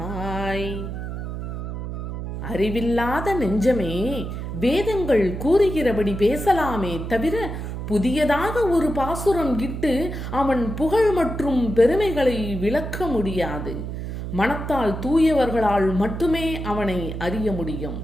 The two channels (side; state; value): right; noise; hum, 6 dB below the sound